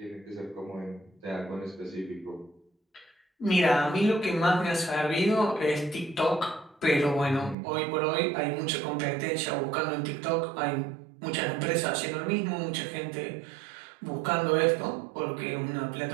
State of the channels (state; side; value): drops out; left; at 7.6 s